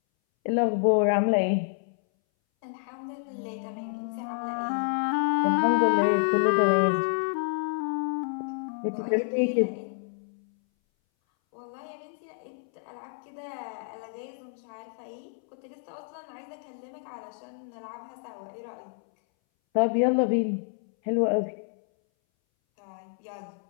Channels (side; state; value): right; silent; 59 dB below the other